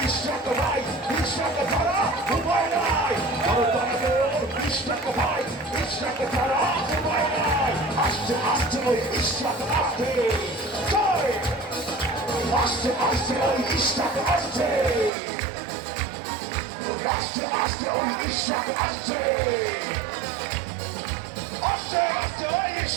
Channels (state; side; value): drops out; left; at 15.1 s